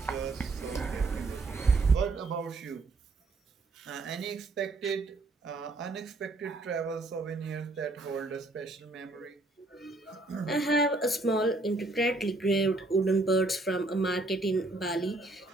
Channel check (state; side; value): quieter; left; 3.1 dB